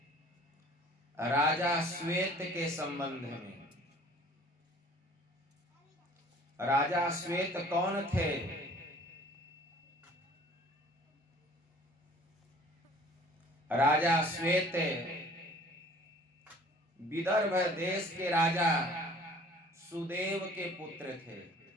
राजा श्वेत के संबंध में। राजा श्वेत कौन थे? राजा श्वेत विदर्भ देश के राजा सुदेव के पुत्र थे।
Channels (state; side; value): normal; both; correlation 0.50